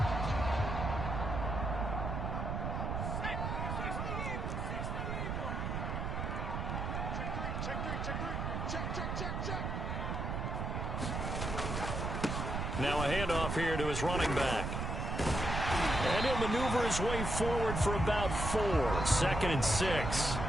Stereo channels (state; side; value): noise; right; rumble, 2 dB below the sound